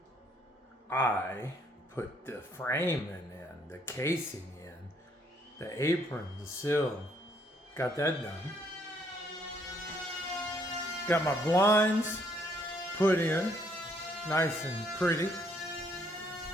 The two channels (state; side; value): normal; both; correlation 0.68